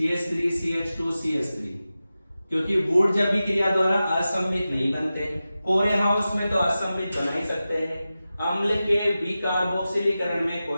CH2 CH3, क्योंकि वुड्स अभिक्रिया द्वारा असममित नहीं बनते। कोरेहाउस में तो असममित बना ही सकते हैं, अम्ल के विकार्बोक्सिलीकरण में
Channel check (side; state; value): both; inverted; correlation -0.94